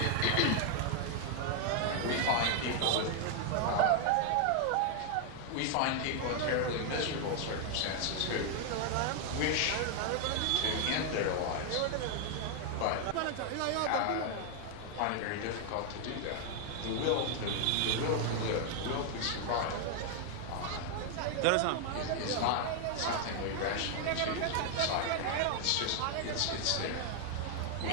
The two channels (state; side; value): different; both; correlation 0.00